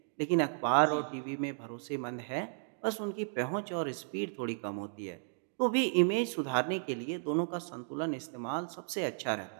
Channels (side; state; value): left; silent; digital silence